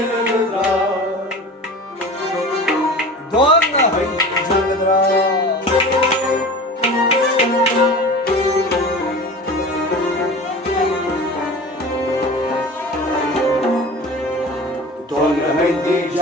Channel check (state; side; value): normal; both; correlation 0.36